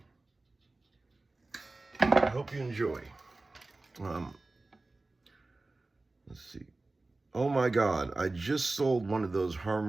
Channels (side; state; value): left; quieter; 3.2 dB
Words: I hope you enjoy. Let's see. Oh my God, I just sold one of those